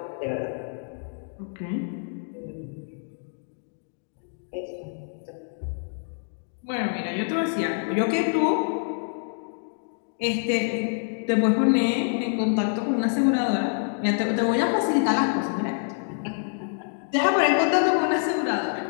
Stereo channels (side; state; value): right; silent; 61 dB below the other